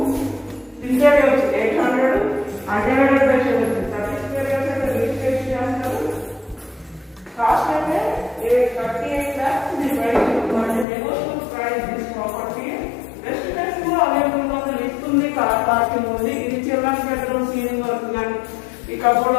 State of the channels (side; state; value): right; drops out; at 10.9 s